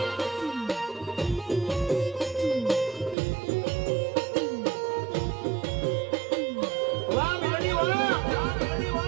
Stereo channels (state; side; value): drops out; left; at 3.2 s